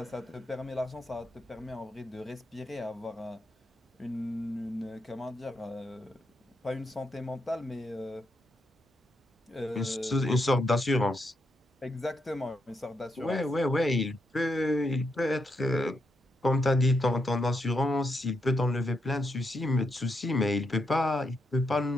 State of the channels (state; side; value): normal; both; correlation 0.82